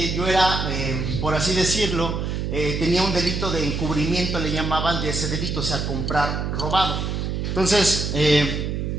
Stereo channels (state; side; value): noise; right; hum, 2 dB below the sound